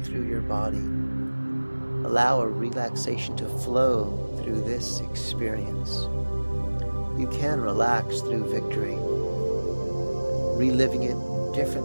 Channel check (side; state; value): both; inverted; correlation -1.00